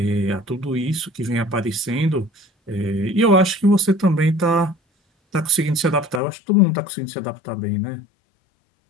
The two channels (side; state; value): right; drops out; at 6.2 s